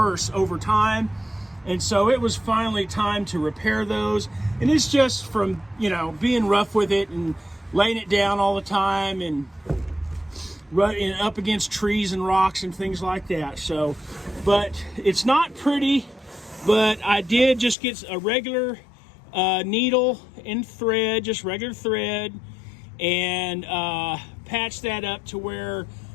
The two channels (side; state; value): right; drops out; at 17.8 s